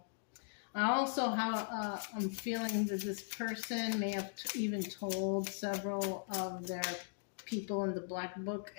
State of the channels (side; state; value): right; silent; digital silence